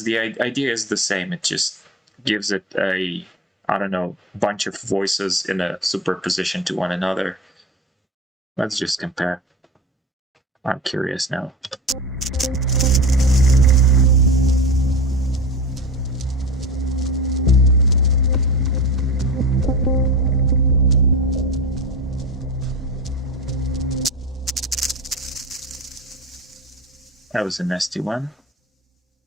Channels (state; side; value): normal; both; correlation 0.31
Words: the idea is the same. It just gives it a, I don't know, bunch of voices in a superposition to one another. Let's just compare. I'm curious now. That was a nasty one.